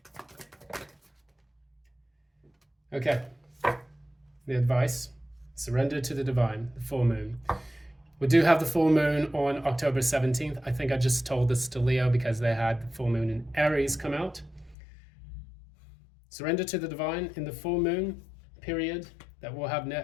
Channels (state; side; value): drops out; right; at 14.8 s